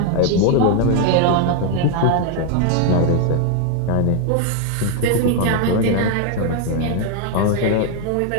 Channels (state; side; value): different; both; correlation 0.01